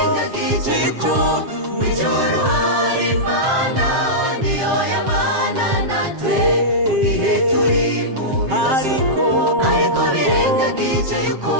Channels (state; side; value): late; left; 7.5 ms